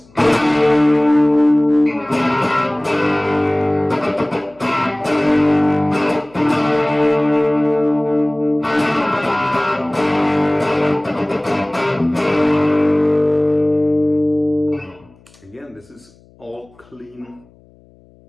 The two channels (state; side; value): noise; left; hum, 29 dB below the sound